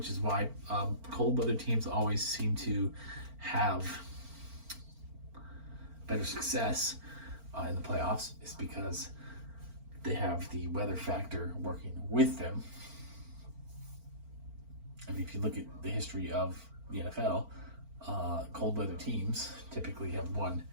is why cold weather teams always seem to have better success in the playoffs, is because they have the weather factor working with them. If you look at the history of the NFL, cold weather teams typically have won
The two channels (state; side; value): late; left; 4.4 ms